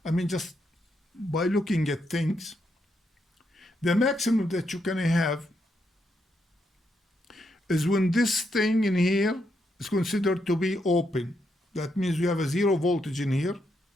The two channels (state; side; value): normal; both; correlation 0.80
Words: I mean, just by looking at things, the maximum that you can have is when this thing in here is considered to be open. That means you have a 0 voltage in here,